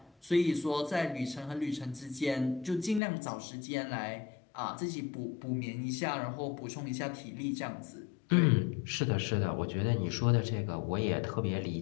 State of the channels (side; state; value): right; drops out; at 3.0 s